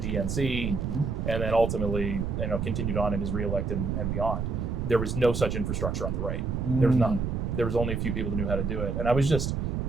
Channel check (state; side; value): noise; right; rumble, 1 dB below the sound